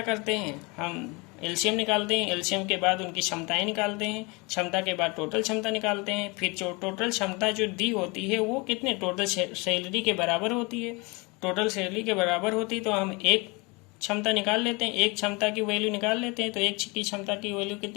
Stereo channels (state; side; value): quieter; right; 27.4 dB